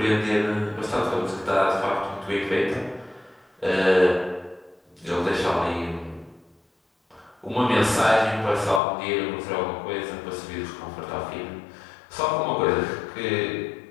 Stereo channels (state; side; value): drops out; right; at 8.8 s